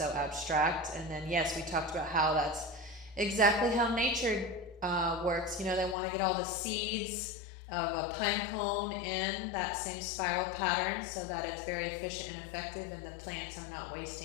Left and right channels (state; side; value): drops out; right; at 6.0 s